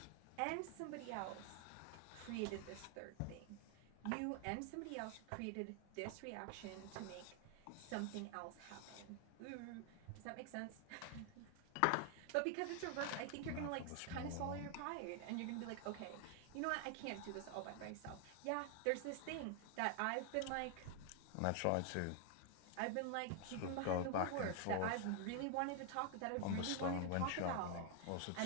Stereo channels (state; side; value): different; both; correlation 0.00